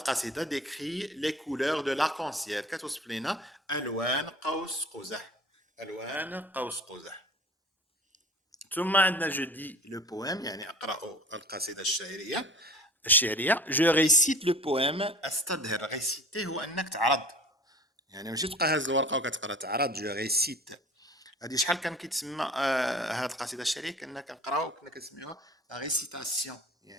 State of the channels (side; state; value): both; normal; correlation 0.43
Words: décrit les couleurs de l'arc-en-ciel. كتوصف لينا ألوان قوس قزح. ألوان قوس قزح. ثم عندنا je dis le poème يعني أقرأ القصيدة الشعرية. Je récite le poème. أستظهر. réciter هو أنك تعرض. يعني ماشي تبقى هاز الورقة وكتقرا تعرض. je récite. هذه شحال كان كيتسمى هذه القصيده الشعريه كنا كنقراو كنا كنسميوها لا ريسيتاسيون